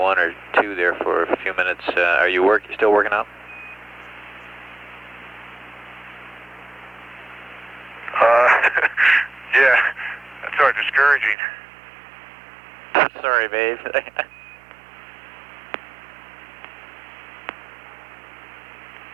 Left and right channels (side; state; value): left; drops out; at 11.4 s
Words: or 2 there for a few minutes. Are you still working out? Yeah, that's sort of discouraging. Sorry, babe.